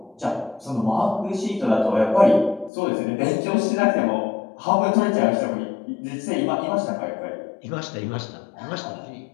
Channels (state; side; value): drops out; right; at 2.7 s